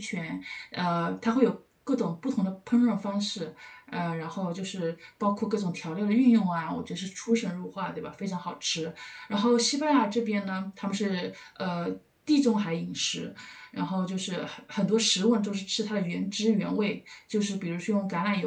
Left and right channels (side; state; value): both; identical; correlation 1.00